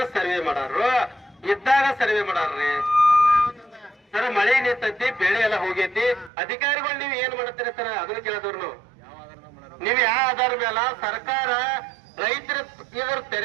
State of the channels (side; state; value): left; drops out; at 6.3 s